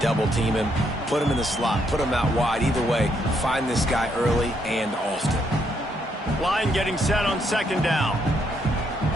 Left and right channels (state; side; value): normal; both; correlation 0.74